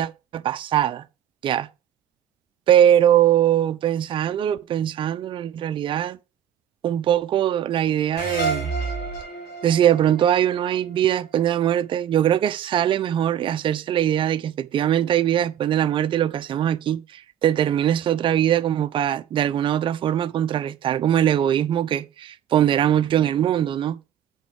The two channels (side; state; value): left; quieter; 10.2 dB